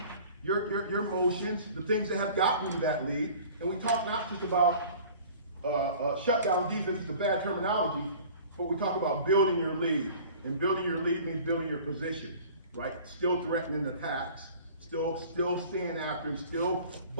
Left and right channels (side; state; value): both; inverted; correlation -0.45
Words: your motions, the things that have gotten you that lead. And we talk not just about shutdown defense is a bad terminology, but we talk about building your lead. And building your lead means building your position, right? Still threatening attacks, still staying after him, still